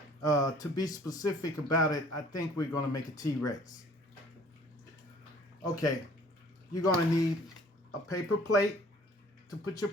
To be specific about it, I think we're going to make a T-Rex. Okay, you're going to need a paper plate to put your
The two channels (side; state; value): both; normal; correlation 0.54